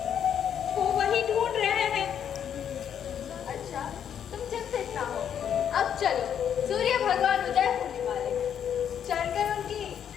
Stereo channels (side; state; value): right; quieter; 8.8 dB